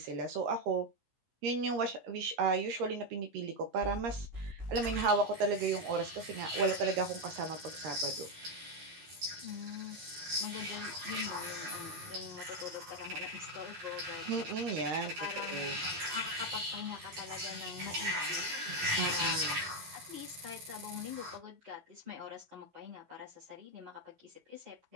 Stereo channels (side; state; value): left; late; 13 ms